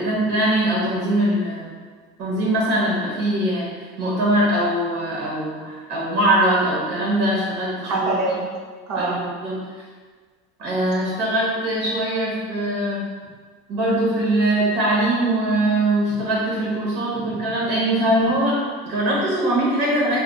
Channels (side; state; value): both; normal; correlation 0.37